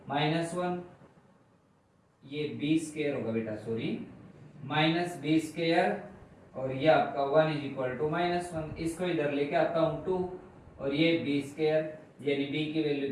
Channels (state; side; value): identical; both; correlation 1.00